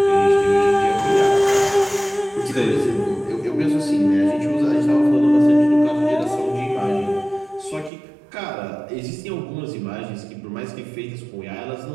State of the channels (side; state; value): left; drops out; at 7.9 s